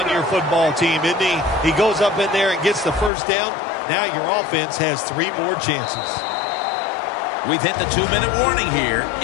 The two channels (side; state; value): right; drops out; at 3.1 s